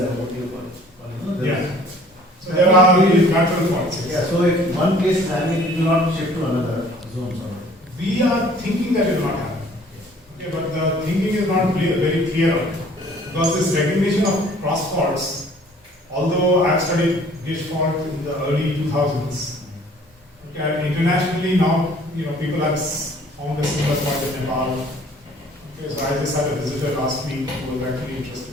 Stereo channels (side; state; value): both; normal; correlation 0.54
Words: what do you call it? Yeah. So there are natural faults. Yeah, so if one case is happening, it will not shift to another zone. We are thinking that it will not happen. Okay, but the thinking is not very clear on it. Because this recognition of cross faults, although I've studied Gish fault in the early 2000s, okay, internationally now, people have found a similar fault in Nepal. Okay, so I just had a visitor last week who was actually